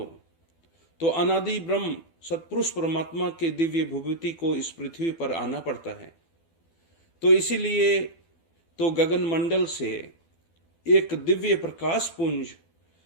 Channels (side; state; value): right; late; 12 ms